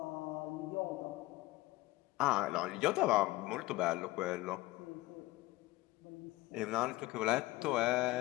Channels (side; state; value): right; quieter; 19.5 dB